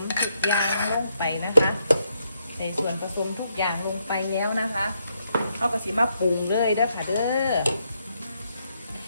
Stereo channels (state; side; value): inverted; both; correlation -0.77